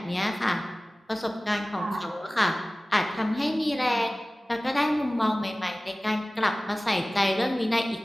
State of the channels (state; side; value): normal; both; correlation 0.98